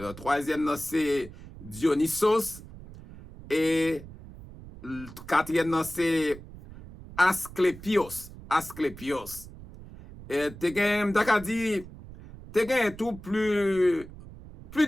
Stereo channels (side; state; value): right; noise; rumble, 16 dB below the sound